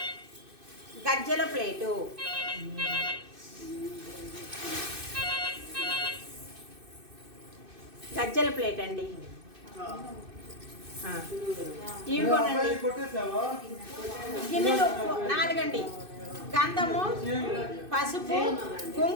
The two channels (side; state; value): left; late; 2.6 ms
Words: గజ్జల ప్లేటు. గజ్జల ప్లేట్ అండి. ఇవిగోనండి గిన్నెలు 4 అండి. గంధము, పసుపు,